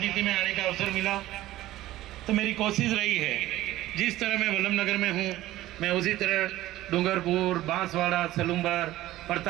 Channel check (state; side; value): quieter; left; 15.6 dB